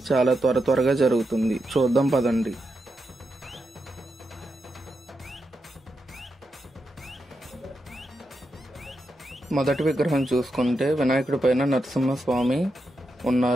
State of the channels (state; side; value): normal; both; correlation 0.86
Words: చాలా త్వరగా జరుగుతుంది. చూద్దాం పదండి. మొదటి విగ్రహం చూసుకుంటే వినాయకుడి పైన నరసింహస్వామి